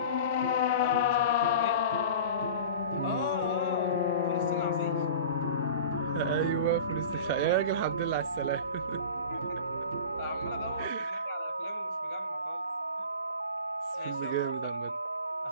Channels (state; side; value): inverted; both; correlation -0.37